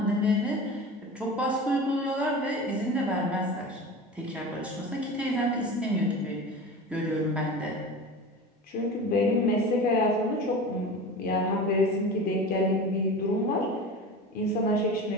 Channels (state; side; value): normal; both; correlation 0.32